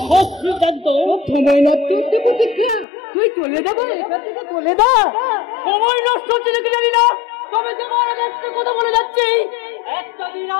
সব সিদ্ধান্ত। সময় নষ্ট হচ্ছে প্রতীক্ষা, তুই চলে যাবি, চলে যা। সময় নষ্ট হচ্ছে নাকি জানি না, তবে তোমার একটা কথা বলে যাচ্ছি, একটা দিন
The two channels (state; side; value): drops out; right; at 2.9 s